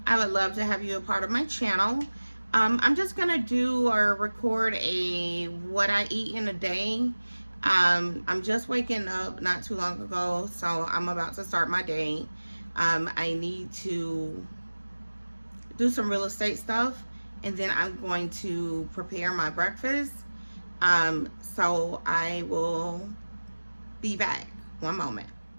I would love to have you a part of my channel. I'm just gonna do or record a what I eat in a day. I'm just waking up not too long ago, so I'm about to start my day. I need to do some real estate stuff, and then I'm going to prepare my breakfast. So I will be back. One moment.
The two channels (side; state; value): both; inverted; correlation -1.00